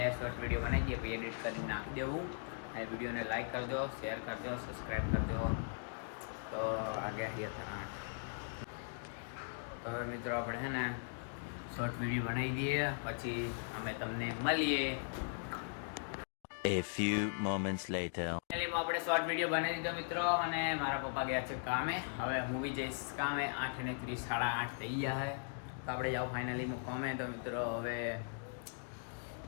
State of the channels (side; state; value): right; silent; digital silence